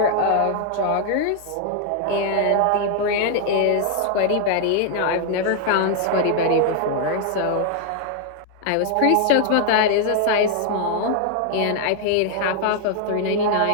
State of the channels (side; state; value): both; different; correlation 0.00